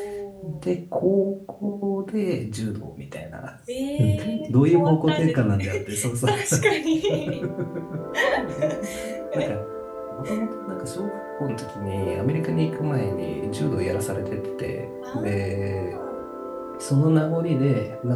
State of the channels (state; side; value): identical; both; correlation 1.00